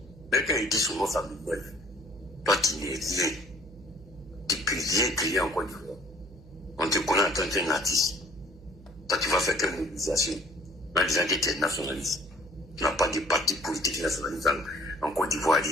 Mais quand il dit son nom, ça m'énerve. Toi qui n'es rien, tu peux rien créer en Côte d'Ivoire. On te connaît en tant qu'un artiste. Toi, tu vas faire quelle mobilisation en disant que tu es nationaliste. Tu n'as pas de parti politique nationaliste en Côte d'Ivoire.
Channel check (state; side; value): noise; right; hum, 20 dB below the sound